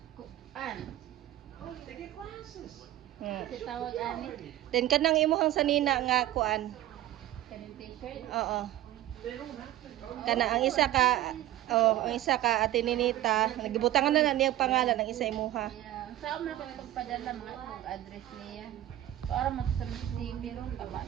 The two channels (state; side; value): quieter; left; 14.0 dB